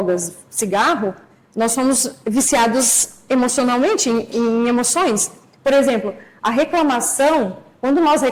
cigarro, nós somos viciados emocionalmente, em emoções. Por exemplo, a reclamação, quando nós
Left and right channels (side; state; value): both; identical; correlation 1.00